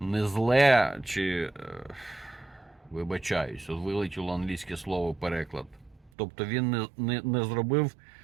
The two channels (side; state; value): left; drops out; at 6.1 s